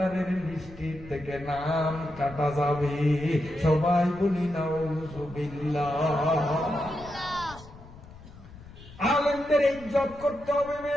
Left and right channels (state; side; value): noise; left; rumble, 18 dB below the sound